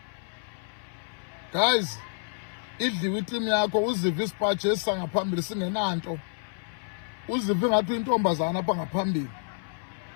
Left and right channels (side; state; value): right; silent; 56 dB below the other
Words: Guys, idliwe itimu yakho uzive isipaji esisangaphambili singenanto uzive ngathi uyintombazana apha ngaphambili